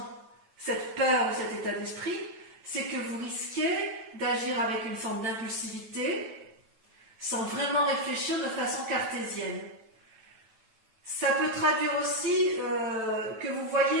ou cet état d'esprit, c'est que vous risquez d'agir avec une forme d'impulsivité sans vraiment réfléchir de façon cartésienne. Ça peut traduire aussi que vous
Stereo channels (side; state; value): left; late; 9.1 ms